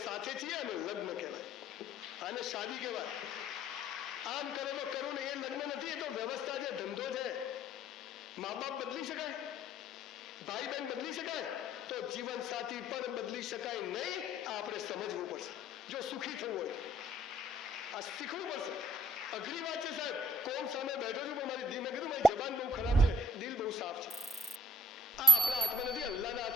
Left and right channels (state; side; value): normal; both; correlation 0.58